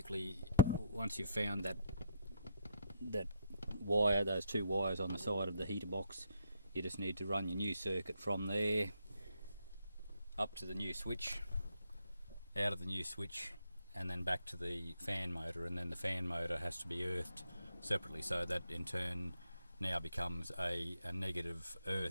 once you've found that wire, those 2 wires on the side of the heater box, you just need to run your new circuit from there up to the new switch, out of the new switch, and then back to the fan motor, and then the fan motor has to be earthed separately, so that in turn now becomes a negative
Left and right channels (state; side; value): inverted; both; correlation -0.72